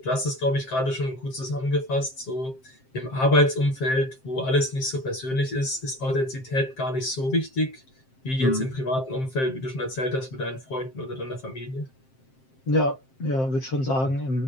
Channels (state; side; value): late; right; 7.6 ms